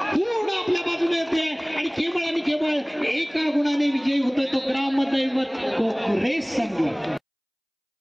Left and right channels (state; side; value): identical; both; correlation 1.00